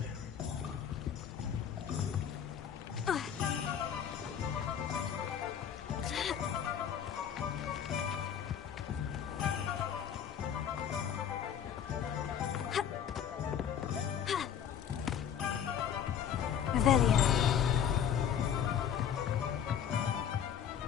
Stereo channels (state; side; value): quieter; right; 8.7 dB